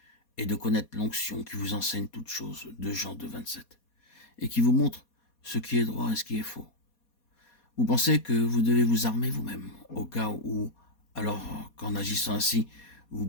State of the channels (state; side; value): late; right; 4.2 ms